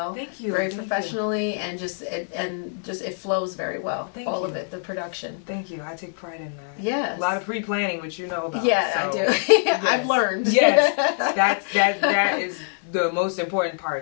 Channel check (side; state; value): right; silent; digital silence